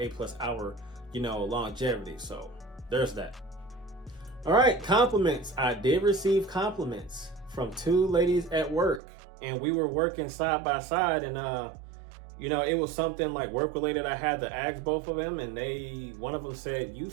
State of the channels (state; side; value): drops out; left; at 9.0 s